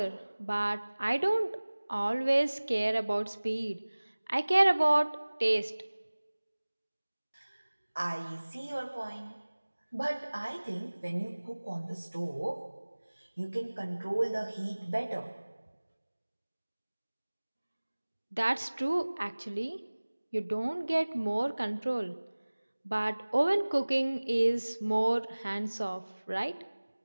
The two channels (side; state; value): both; inverted; correlation -1.00